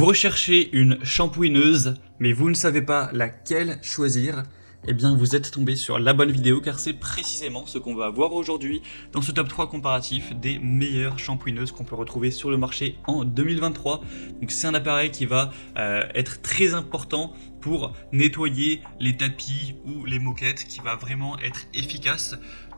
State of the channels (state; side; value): inverted; both; correlation -1.00